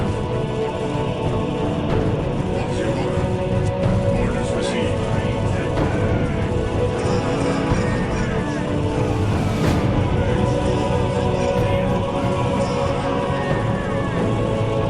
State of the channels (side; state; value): both; identical; correlation 1.00